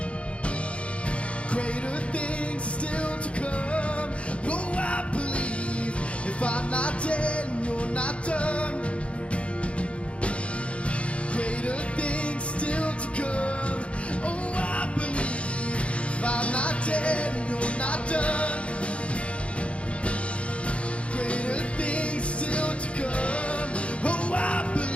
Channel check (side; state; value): right; late; 0.061 ms